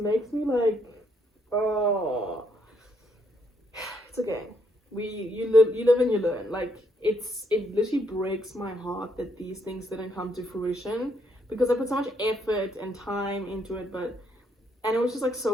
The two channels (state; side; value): normal; both; correlation 0.73